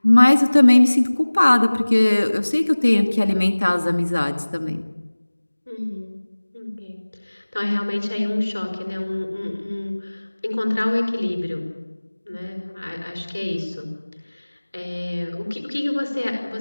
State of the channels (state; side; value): inverted; both; correlation -1.00